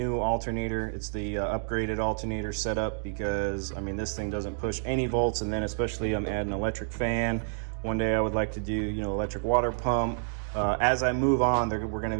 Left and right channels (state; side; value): silent; left; digital silence